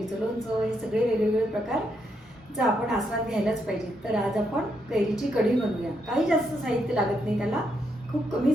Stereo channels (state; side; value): normal; both; correlation 0.78